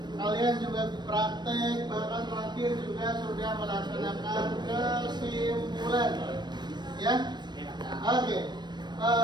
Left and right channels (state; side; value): late; left; 0.21 ms